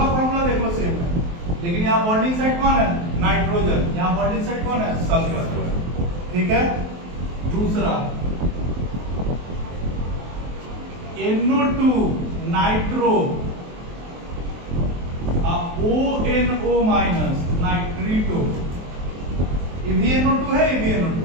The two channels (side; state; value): left; late; 23 ms